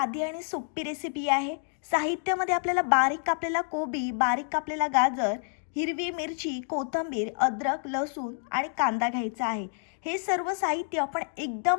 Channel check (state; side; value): silent; right; digital silence